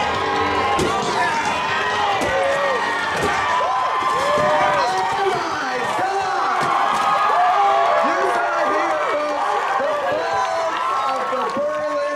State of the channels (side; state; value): both; identical; correlation 1.00